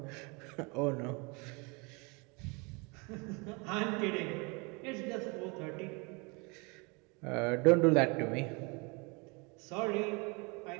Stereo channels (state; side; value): quieter; left; 29.8 dB